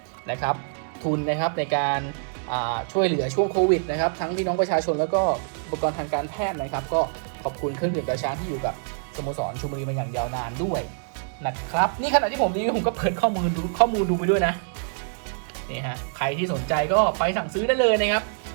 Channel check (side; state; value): left; silent; 62 dB below the other